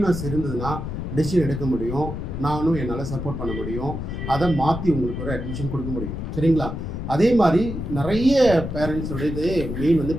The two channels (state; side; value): noise; left; rumble, 5 dB below the sound